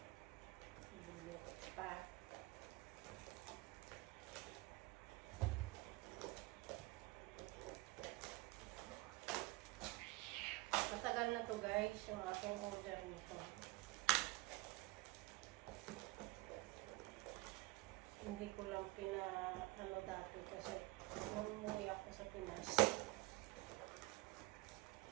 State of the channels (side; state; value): left; quieter; 21.7 dB